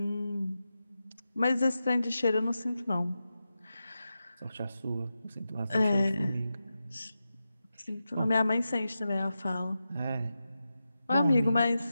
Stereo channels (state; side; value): inverted; both; correlation -0.91